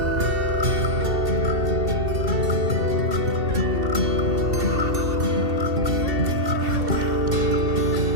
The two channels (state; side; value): late; left; 2.7 ms